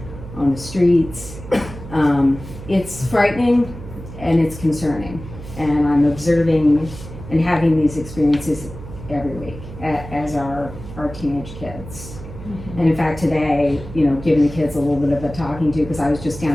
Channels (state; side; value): noise; right; hum, 13 dB below the sound